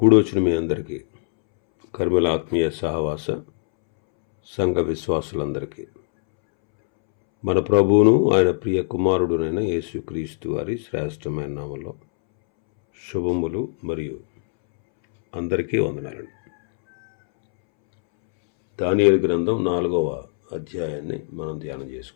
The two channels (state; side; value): silent; right; 64 dB below the other